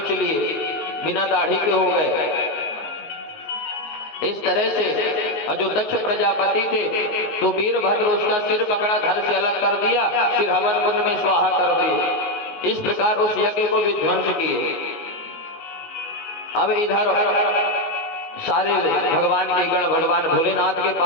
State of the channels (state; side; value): late; right; 19 ms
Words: लिए। बिना दाढ़ी के हो गए। इस तरह से जो दक्ष प्रजापति थे तो वीरभद्र उसका सिर पकड़ा, धड़ से अलग कर दिया, फिर हवन कुंड में स्वाहा कर दिए। इस प्रकार उस यज्ञ को विध्वंस किए। अब इधर सारे भगवान के गण भगवान भोलेनाथ के